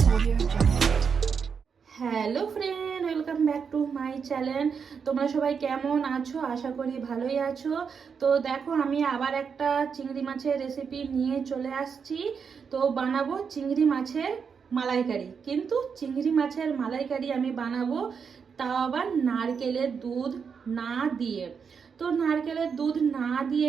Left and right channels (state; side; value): quieter; left; 6.2 dB